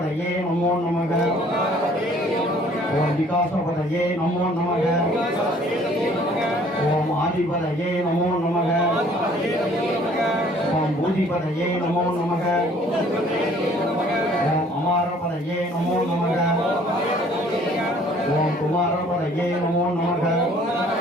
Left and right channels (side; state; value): both; normal; correlation 0.57